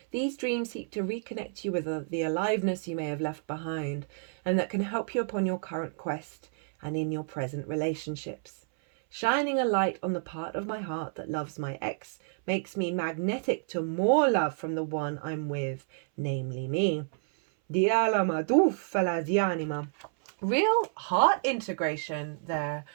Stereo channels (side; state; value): left; silent; 58 dB below the other